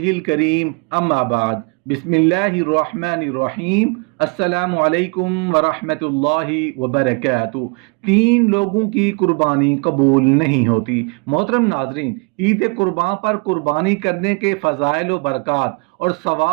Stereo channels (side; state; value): left; quieter; 32.1 dB